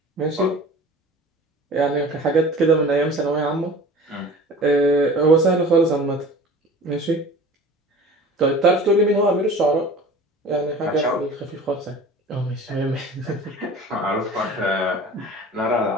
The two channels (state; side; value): normal; both; correlation 0.41